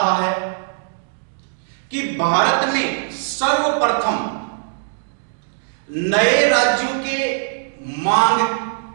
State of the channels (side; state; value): left; silent; 65 dB below the other